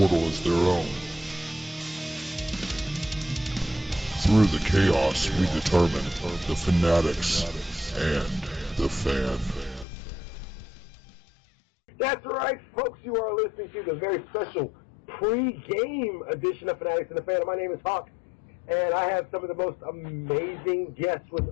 as their own. Through the chaos, we determine the fanatics and the fan. That's right, folks. You are listening to the very special pre-game edition of Fanatics and the Fan. My name is Hawk, and I have some of the most amazing guests with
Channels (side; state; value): right; drops out; at 9.9 s